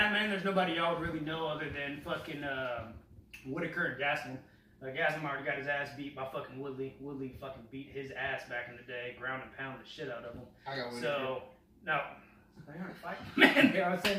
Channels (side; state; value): both; identical; correlation 1.00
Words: man, there's nobody y'all would really know other than fucking Whitaker and Gaslam. Gaslam already got his ass beat by fucking Woodley. Woodley fucking beat his ass back in the day, ground and pound the shit out of him. I got So no. They aren't fighting. Man, I was saying